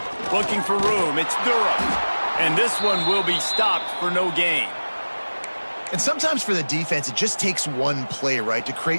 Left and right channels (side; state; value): both; inverted; correlation -1.00